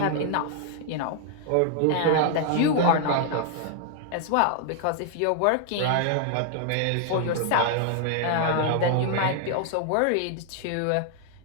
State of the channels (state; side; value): different; both; correlation 0.00